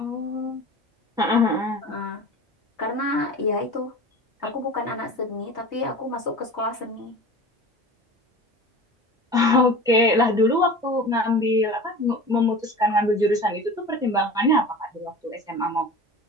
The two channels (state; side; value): normal; both; correlation 0.37